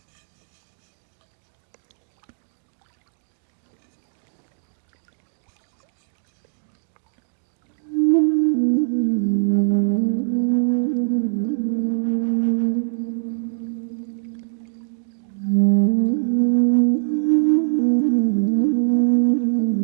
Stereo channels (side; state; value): left; silent; 64 dB below the other